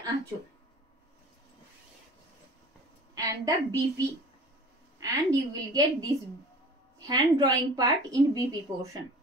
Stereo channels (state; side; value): normal; both; correlation 0.43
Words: আঁচল, and the BP, and you will get this hand drawing part in BP portion.